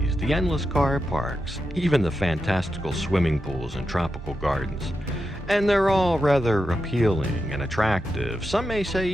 the endless car parks, even the fantastical swimming pools and tropical gardens. And they're all rather appealing and attractive, some may say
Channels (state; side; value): normal; both; correlation 0.88